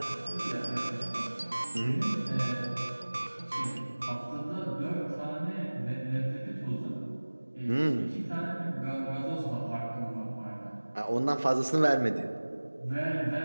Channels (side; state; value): both; inverted; correlation -1.00